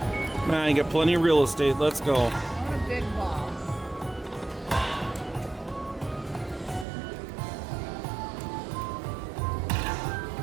Come on, you got plenty of real estate. Let's go. What a big ball.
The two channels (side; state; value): left; drops out; at 6.9 s